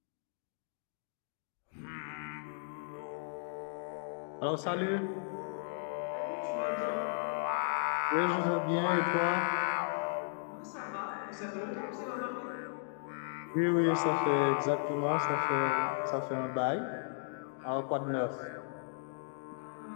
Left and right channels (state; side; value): silent; right; digital silence